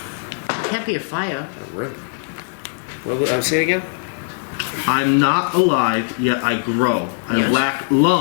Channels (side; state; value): right; silent; 66 dB below the other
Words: Can't be a fire. A riddle. What? Say it again. I'm not alive, yet I grow. I Yes. lack